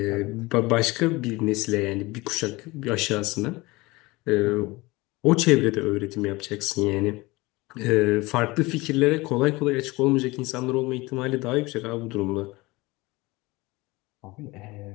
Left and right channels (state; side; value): quieter; right; 22.2 dB